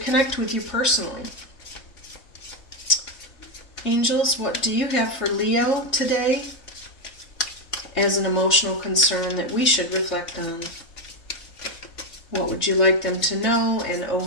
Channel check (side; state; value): right; late; 3.3 ms